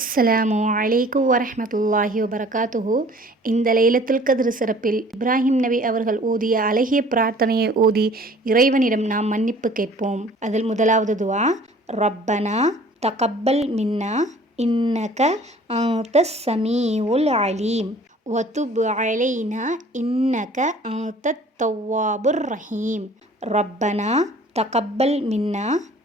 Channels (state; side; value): normal; both; correlation 0.51